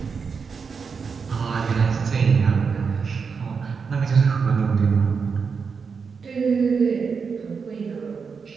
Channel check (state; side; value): quieter; left; 5.6 dB